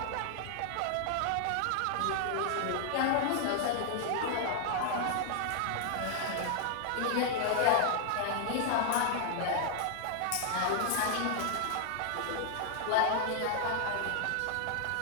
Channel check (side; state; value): both; different; correlation -0.01